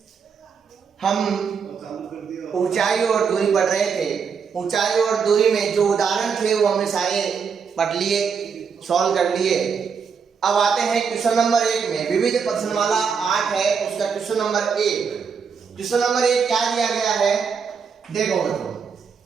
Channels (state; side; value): quieter; left; 6.2 dB